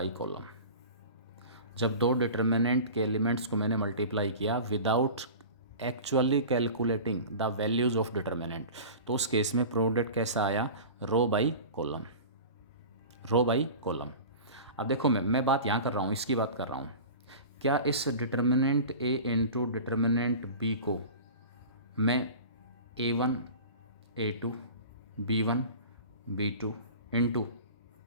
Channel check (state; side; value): inverted; both; correlation -0.36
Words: कॉलम। जब दो डिटर्मिनेंट के एलिमेंट्स को मैंने मल्टीप्लाई किया without actually calculating the values of determinant, तो उस केस में प्रोडक्ट कैसा आया, row by column, row by column. अब देखो मैं बात यहाँ कर रहा हूँ, इसकी बात कर रहा हूँ। क्या इस determinant A into determinant B को मैं A1 A2 B1 B2 into